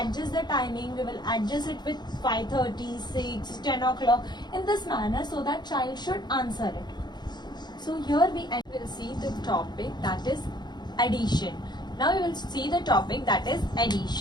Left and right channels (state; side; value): late; right; 0.21 ms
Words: the timing, we will adjust it with 5:30, 6, 10 o'clock in this manner, so that child should answer it. So here we will see the topic, that is addition. Now we will see the topic, that is